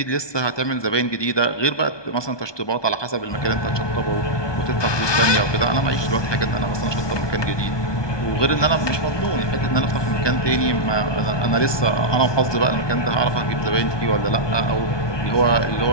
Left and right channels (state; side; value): late; right; 1.2 ms